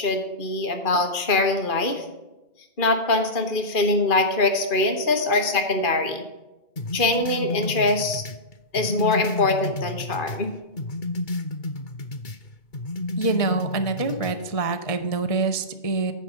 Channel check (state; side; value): late; right; 2.4 ms